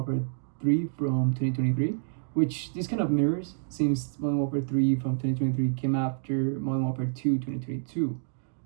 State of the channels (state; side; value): silent; left; digital silence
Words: 3 from 2023, which this kind of mirrors since Modern Warfare 3 from 2023 came after Modern Warfare 2 2022.